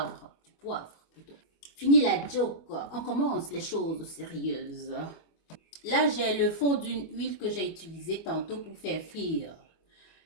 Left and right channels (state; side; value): late; right; 25 ms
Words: Du poivre, plutôt. Fini la joke. On commence les choses sérieuses. Là, j'ai le fond d'une huile que j'ai utilisée tantôt pour faire frire